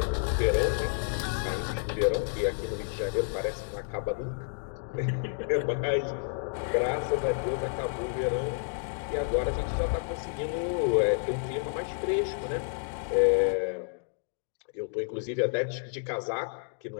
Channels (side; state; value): right; silent; digital silence